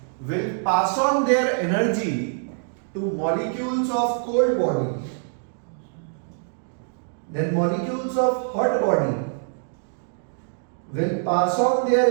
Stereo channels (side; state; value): left; silent; digital silence